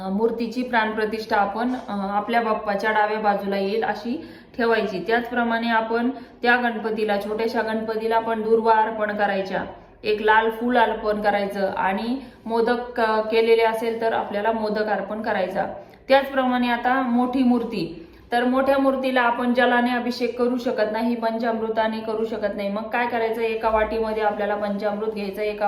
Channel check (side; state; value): both; identical; correlation 1.00